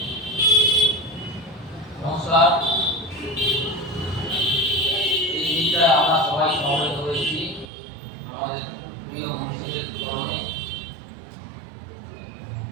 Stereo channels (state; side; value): drops out; left; at 7.7 s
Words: নমস্কার। এই দিনটায় আমরা সবাই সমবেত হয়েছি আমাদের প্রিয় মনীষীদের স্মরণে।